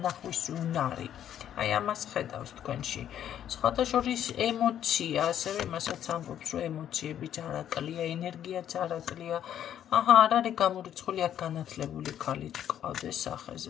უნარი. აი ამას ხედავს თქვენში. სხვათა შორის ემოცია, ასევე იმასაც ამბობს, რომ ემოციები ჯარაკლია, ენერგია ჯარაკლია. არ არის გამორიცხული აქ განათლებული ქალი გყავდეს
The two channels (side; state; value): right; quieter; 10.3 dB